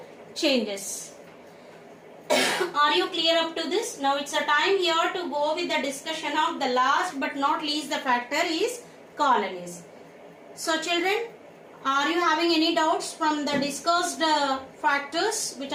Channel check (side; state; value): both; identical; correlation 1.00